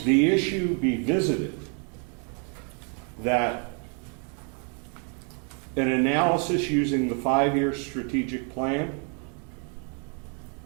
issue be visited, that an analysis using the 5-year strategic plan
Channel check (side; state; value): left; quieter; 39.7 dB